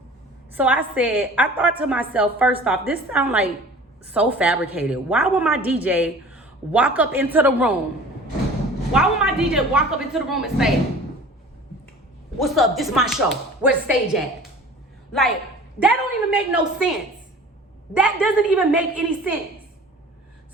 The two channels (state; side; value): normal; both; correlation 0.44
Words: So I thought to myself, first off, this sounds like so fabricated. Why would my DJ walk up into the room? Why would my DJ walk up into the room and say, what's up? This is my show. Where's the stage at? Like, that don't even make no sense. That doesn't even make any sense.